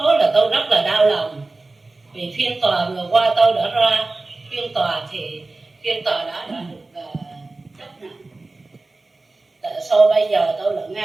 là tôi rất là đau lòng, vì phiên tòa vừa qua tôi đã ra phiên tòa thì phiên tòa đã được chấp nhận. Tại sao bây giờ tôi lại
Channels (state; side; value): quieter; left; 3.2 dB